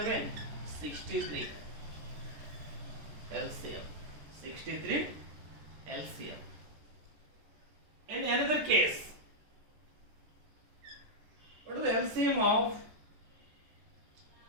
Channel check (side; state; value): left; late; 14 ms